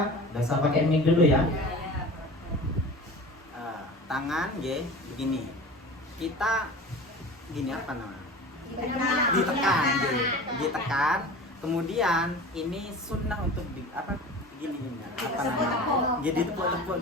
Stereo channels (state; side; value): normal; both; correlation 0.37